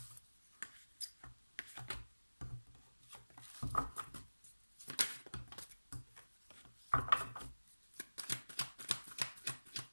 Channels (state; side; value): inverted; both; correlation -1.00